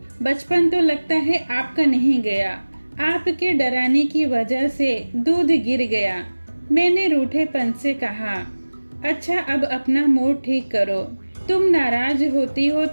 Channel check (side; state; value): both; inverted; correlation -1.00